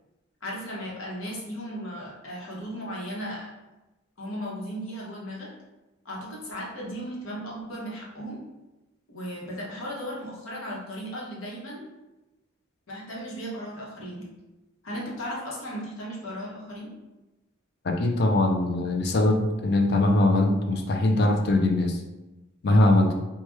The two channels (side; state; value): both; normal; correlation 0.68